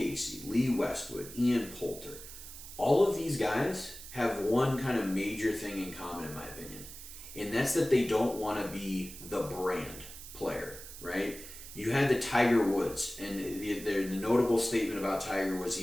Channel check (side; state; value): right; noise; hiss, 13 dB below the sound